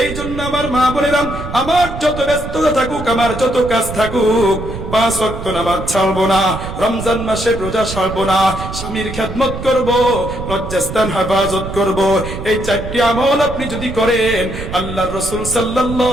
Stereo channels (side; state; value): right; noise; rumble, 9 dB below the sound